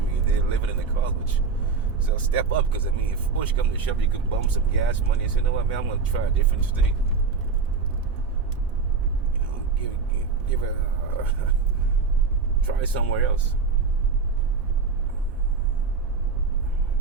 I mean, they're living in the cars, which. So step up, because I mean, if push comes to shove, you can bump some gas money and say, you know what, man, I'm going to try a different state. Give it, try somewhere else.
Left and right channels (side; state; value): left; quieter; 4.9 dB